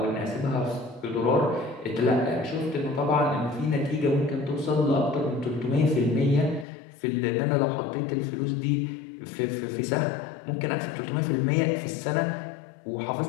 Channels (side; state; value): right; drops out; at 6.7 s